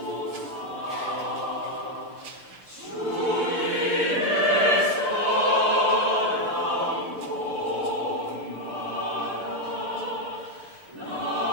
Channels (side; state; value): left; late; 6.8 ms